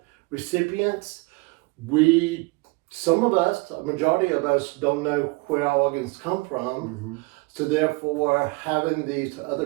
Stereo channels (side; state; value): left; quieter; 26.6 dB